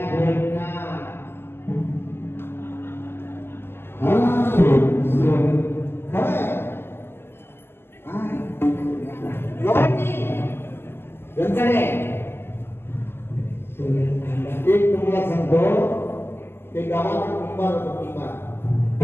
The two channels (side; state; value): right; late; 0.11 ms